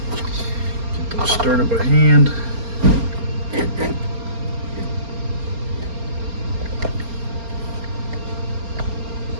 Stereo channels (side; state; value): left; late; 4.3 ms